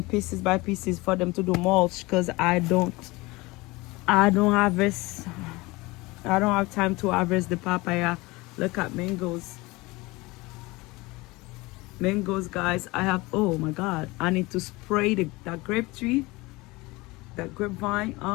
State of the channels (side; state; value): right; quieter; 22.5 dB